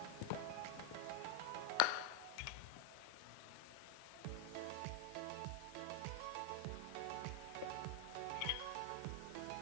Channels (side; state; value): both; different; correlation 0.00